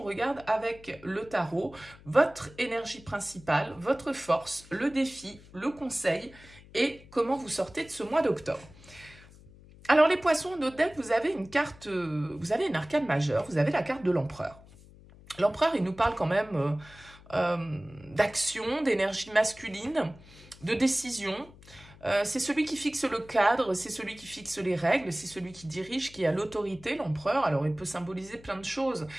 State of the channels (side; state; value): left; noise; hum, 22 dB below the sound